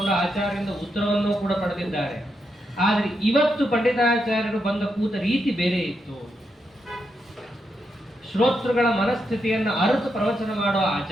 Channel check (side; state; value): both; normal; correlation 0.83